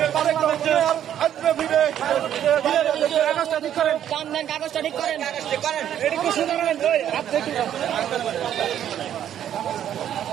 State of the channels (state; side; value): quieter; left; 10.4 dB